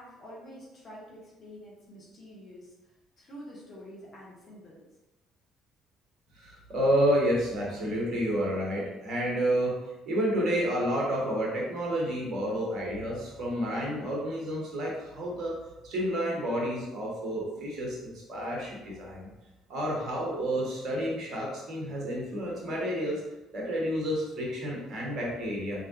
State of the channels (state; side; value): normal; both; correlation 0.64